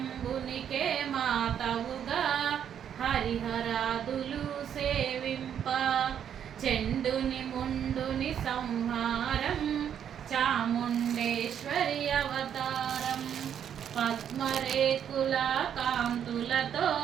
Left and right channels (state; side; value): quieter; left; 8.9 dB